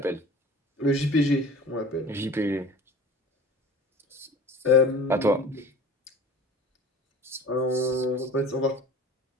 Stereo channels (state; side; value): normal; both; correlation 0.41